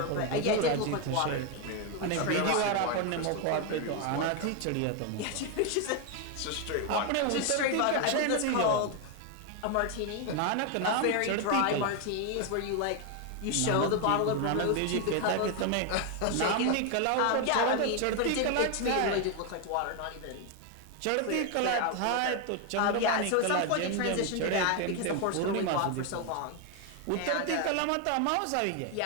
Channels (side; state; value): both; different; correlation 0.01